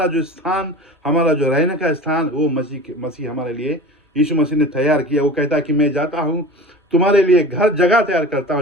जो स्थान, हमारा जो रहने का स्थान, वो मसीह हमारे लिए यीशु मसीह ने तैयार किया। वो कहता है कि मैं जाता हूँ तुम्हारे लिए जगह तैयार करता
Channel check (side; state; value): both; normal; correlation 0.36